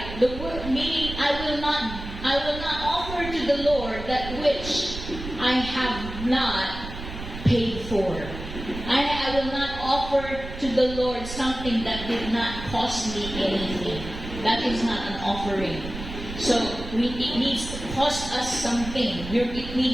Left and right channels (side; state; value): right; noise; rumble, 9 dB below the sound